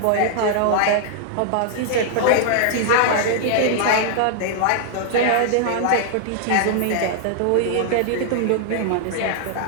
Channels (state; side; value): different; both; correlation -0.01